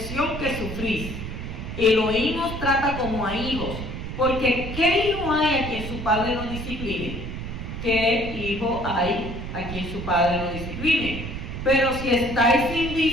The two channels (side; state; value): right; noise; rumble, 7 dB below the sound